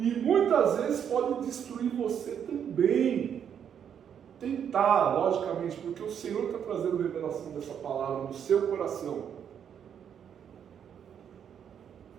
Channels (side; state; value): left; quieter; 8.4 dB